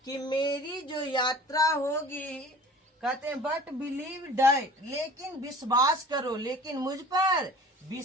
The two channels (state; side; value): normal; both; correlation 0.44